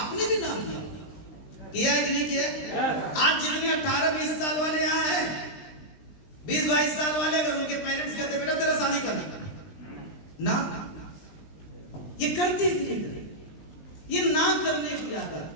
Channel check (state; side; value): late; right; 20 ms